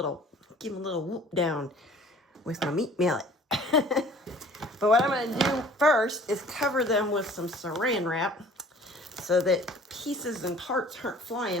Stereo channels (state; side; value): normal; both; correlation 0.51